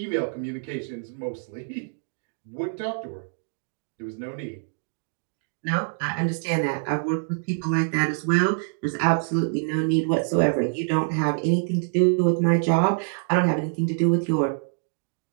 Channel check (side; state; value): left; silent; digital silence